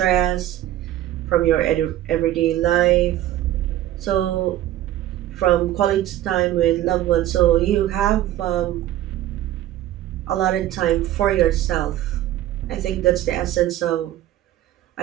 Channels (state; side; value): quieter; left; 13.4 dB